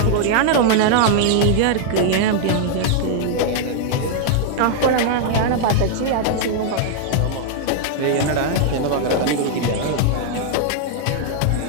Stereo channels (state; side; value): different; both; correlation -0.01